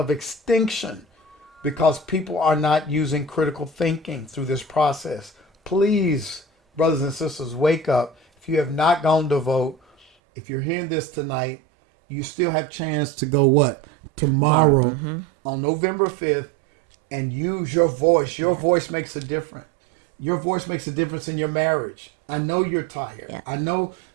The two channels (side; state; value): left; drops out; at 10.1 s